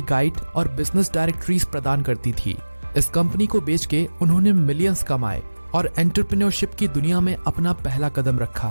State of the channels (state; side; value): inverted; both; correlation -1.00